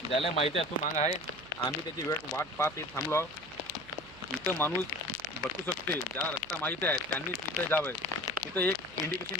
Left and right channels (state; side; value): noise; right; hum, 21 dB below the sound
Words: ज्याला माहिती आहे तो माग आहे. आम्ही त्याची वाट पाहत थांबलो. इथं माणूस बसू शकते. ज्याला रस्ता माहिती आहे त्यांनी तिथं जावं. तिथं एक